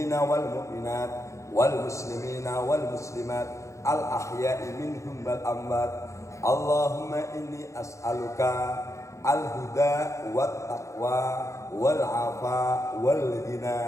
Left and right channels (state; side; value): late; right; 0.15 ms